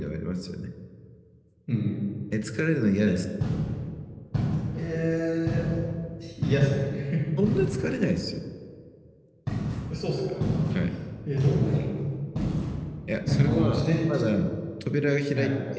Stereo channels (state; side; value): identical; both; correlation 1.00